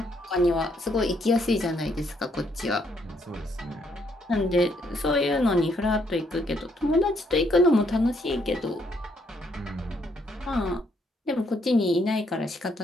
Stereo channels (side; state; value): both; normal; correlation 0.72